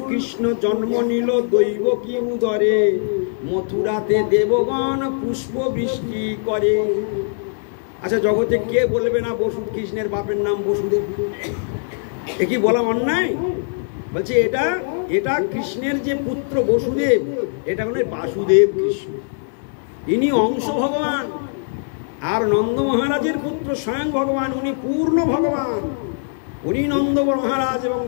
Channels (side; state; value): right; silent; digital silence